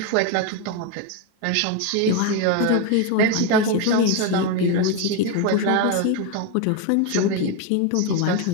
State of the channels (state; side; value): different; both; correlation 0.02